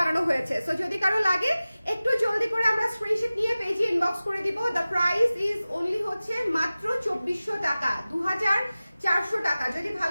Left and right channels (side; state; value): both; inverted; correlation -0.97